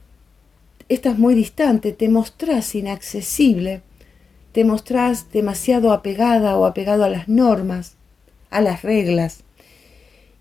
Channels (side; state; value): right; quieter; 5.0 dB